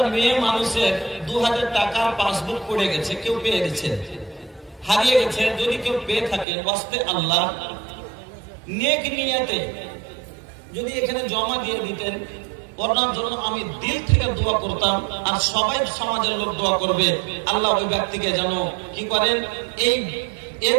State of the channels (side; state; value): left; drops out; at 6.5 s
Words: মেয়ে মানুষের 2000 টাকার পাসবুক পড়ে গেছে, কেউ পেয়ে গেছে, হারিয়ে গেছে। যদি কেউ পেয়ে থাকে ওয়াস্তে আল্লাহ নেক নিয়তে যদি এখানে জমা দিয়ে দিতেন, ওনার জন্য আমি দিল থেকে দোয়া করতাম, আর সবাই সমাজের লোক দোয়া করবে আল্লাহ ওই ব্যক্তিকে যেন কি করেন, এর